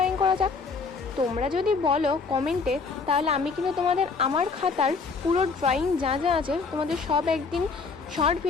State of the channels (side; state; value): right; quieter; 4.7 dB